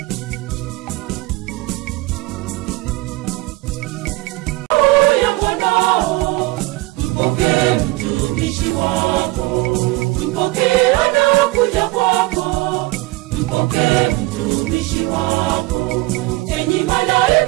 Mpokee mtumishi wako, mpokee anakuja kwako, mpokee mtumishi wako. Enyi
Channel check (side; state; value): left; quieter; 20.8 dB